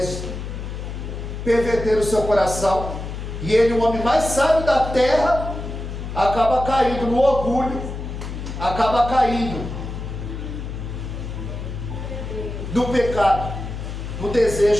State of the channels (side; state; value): left; noise; hum, 7 dB below the sound